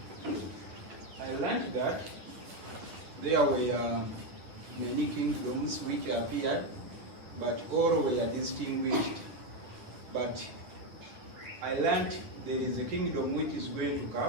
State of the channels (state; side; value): late; left; 10 ms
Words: I learned that there were many kingdoms which appeared, but all were distinguished. But I learned there is a kingdom which is going to